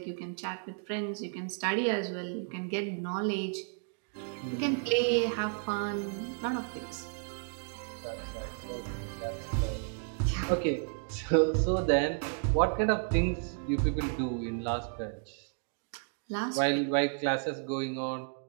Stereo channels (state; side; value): silent; left; 56 dB below the other